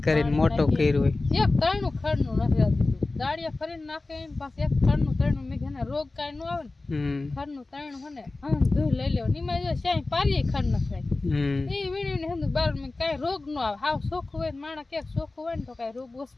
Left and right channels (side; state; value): right; quieter; 3.3 dB